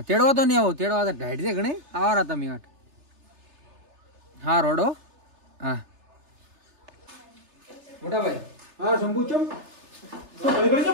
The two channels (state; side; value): late; left; 3.3 ms